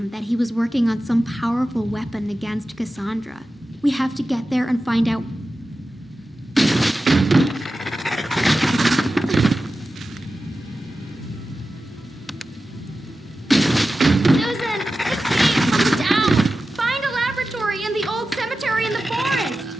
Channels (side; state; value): both; normal; correlation 0.93